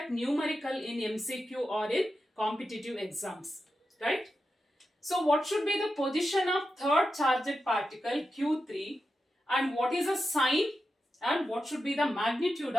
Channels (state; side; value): normal; both; correlation 0.89